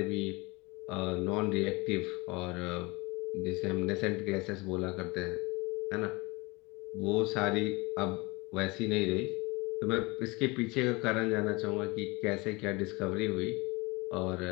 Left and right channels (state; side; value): quieter; right; 25.0 dB